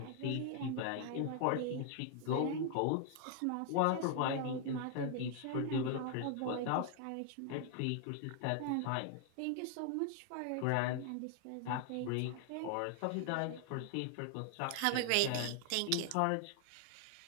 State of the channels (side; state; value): both; different; correlation 0.00